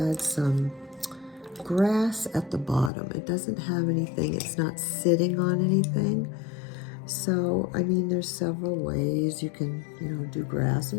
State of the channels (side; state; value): right; drops out; at 2.9 s